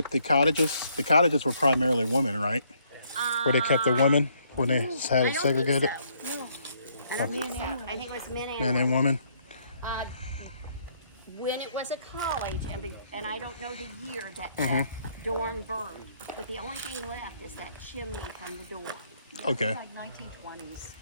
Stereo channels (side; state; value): both; inverted; correlation -0.69